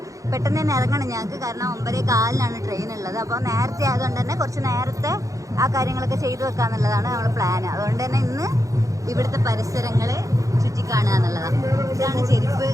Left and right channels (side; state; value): left; late; 0.16 ms